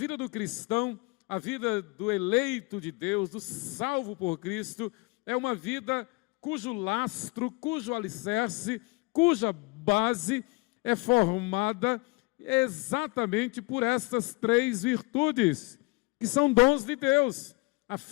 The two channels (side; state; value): right; quieter; 26.5 dB